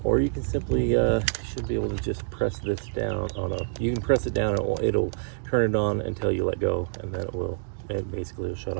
Or you can simply, should be able to just press this down. Oh no, you can press it down and it'll turn it on until you let go, and then it basically will shut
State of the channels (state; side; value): silent; left; digital silence